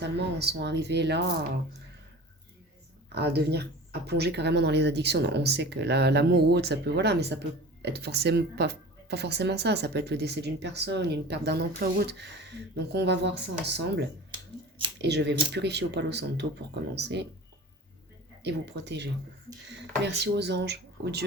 en sont arrivées là à devenir, à plonger carrément dans les addictions. Non, on sait que l'amour ou autre, ça peut, voilà, mais ça peut être forcément pas forcément ça. Ça peut être le décès d'une personne, une perte d'un emploi ou autre. Donc on va voir ça ensemble. Et je vais vous purifier au Palo Santo pour commencer et vous protéger. Merci aux anges, aux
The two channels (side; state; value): both; normal; correlation 0.38